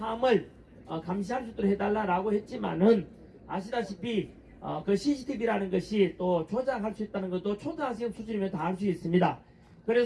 감시할 수 있도록 해달라고 했지만은 아시다시피 그 CCTV라는 것이 또 조작할 수 있다는 것도 초등학생 수준이면 다 알 수 있습니다.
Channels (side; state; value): both; identical; correlation 1.00